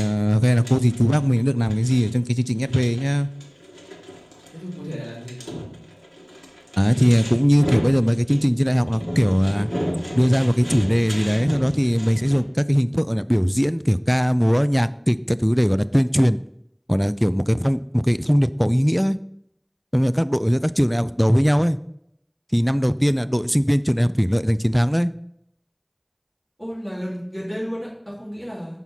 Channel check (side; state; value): both; identical; correlation 1.00